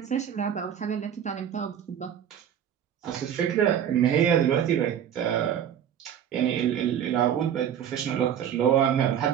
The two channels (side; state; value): left; quieter; 9.3 dB